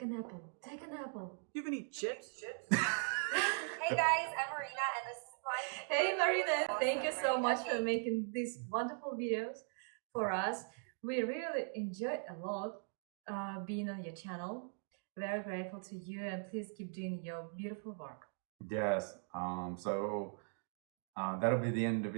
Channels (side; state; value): left; silent; 51 dB below the other